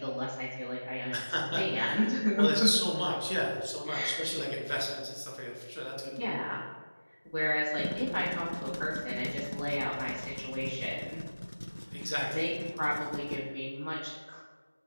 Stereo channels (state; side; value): inverted; both; correlation -1.00